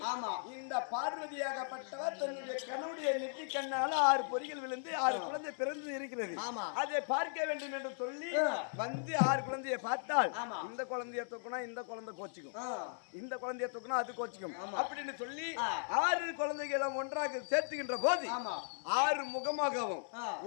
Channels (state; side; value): silent; right; 53 dB below the other